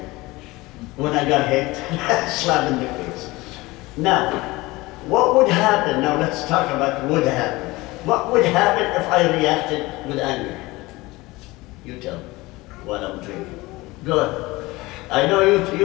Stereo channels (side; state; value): right; quieter; 21.0 dB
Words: When I got hit, slap in the face. Now, what would happen? Now let's talk about what would happen. What would happen if I reacted with anger? You tell me what I'm drinking. Go ahead. I know